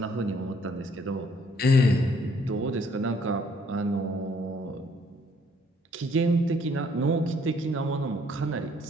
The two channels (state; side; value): normal; both; correlation 0.64